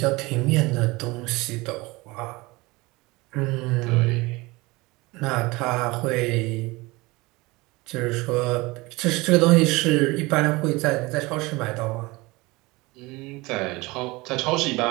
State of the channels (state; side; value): quieter; left; 22.7 dB